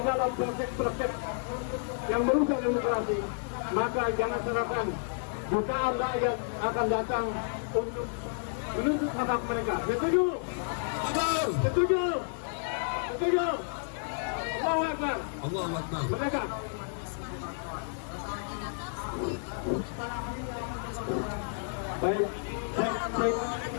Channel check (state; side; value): silent; right; 57 dB below the other